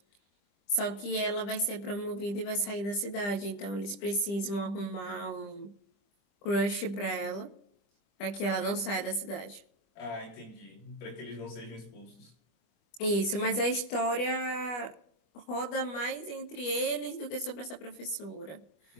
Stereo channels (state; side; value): late; right; 25 ms